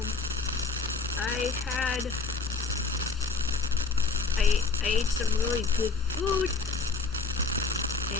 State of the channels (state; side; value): quieter; right; 4.2 dB